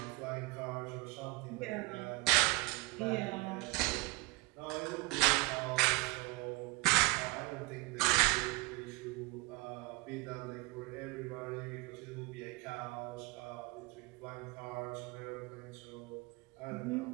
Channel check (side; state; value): left; quieter; 24.7 dB